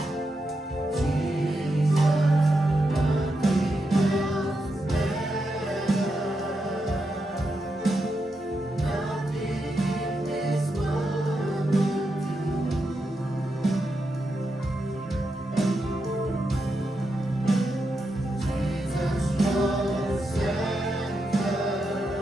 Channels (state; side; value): normal; both; correlation 0.85